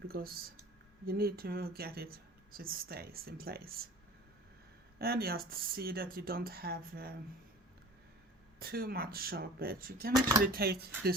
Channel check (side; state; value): both; normal; correlation 0.41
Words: because you need to get it so it stays in place. And just see that you don't have too much sharp edge. You can actually take